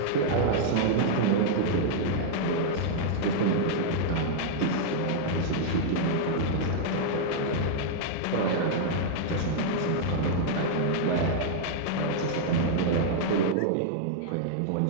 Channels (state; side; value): different; both; correlation -0.01